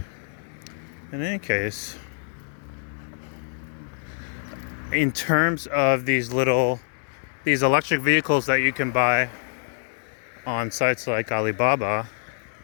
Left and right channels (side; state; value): right; silent; digital silence